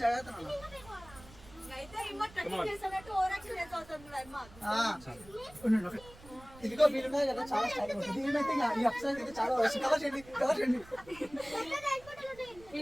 జాగ్రత్త నాన్న. అయితే రిమోట్ కటింగ్ చేస్తానట్టు ఓవరాక్షన్ చేస్తాను అమ్మా. ఇదిగో మీరు ఉన్నాయి కదా, చాలా స్టైల్ ఉంటుంది. దీనిమైతే ఈ అప్సైడ్ అయితే చాలా కవర్ చేయండి, కవర్ చేయండి.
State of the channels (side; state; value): right; noise; rumble, 21 dB below the sound